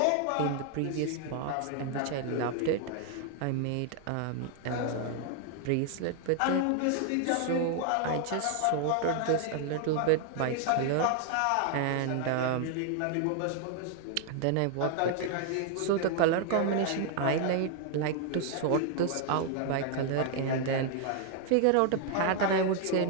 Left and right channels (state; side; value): different; both; correlation 0.00